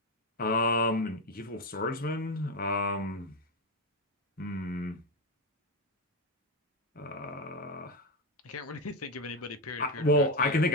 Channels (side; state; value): both; normal; correlation 0.10